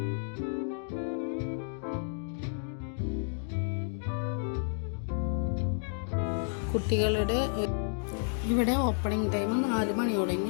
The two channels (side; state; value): right; silent; digital silence